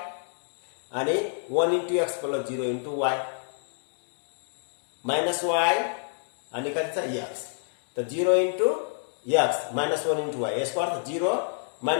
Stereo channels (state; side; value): silent; right; digital silence